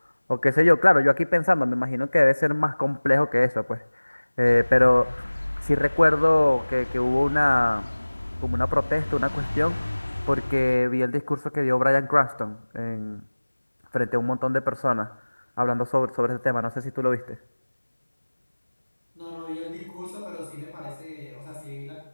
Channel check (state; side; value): inverted; both; correlation -1.00